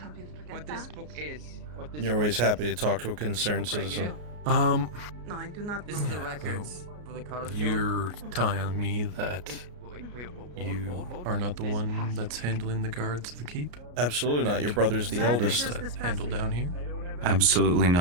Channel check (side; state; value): left; late; 33 ms